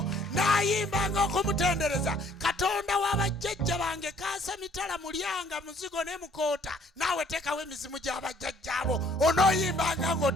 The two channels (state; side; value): normal; both; correlation 0.60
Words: Naayimbanga okumutendereza Katonda wa bajjajja bange. Kaasa mitala mulyanga muzigo ne mukoota. Naawe teekawo emizimu gy'abajjajjaabo. Onooyimbanga